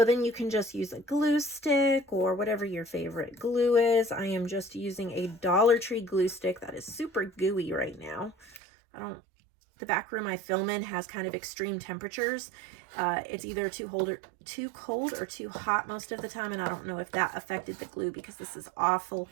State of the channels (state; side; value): drops out; left; at 8.6 s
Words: then you can just use a glue stick or whatever your favorite glue is. I am just using a Dollar Tree glue stick that is super gooey right now. The back room I film in has kind of extreme temperatures. It's either too cold or too hot most of the time, and I don't know if that affected the glue because this is awful.